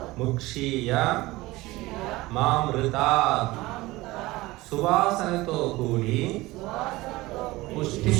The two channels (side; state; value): left; quieter; 19.7 dB